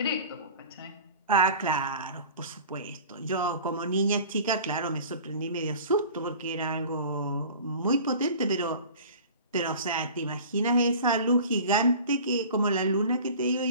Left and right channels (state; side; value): inverted; both; correlation -0.41